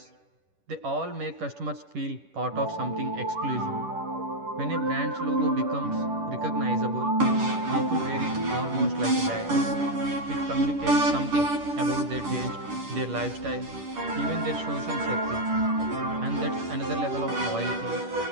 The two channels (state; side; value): late; left; 10 ms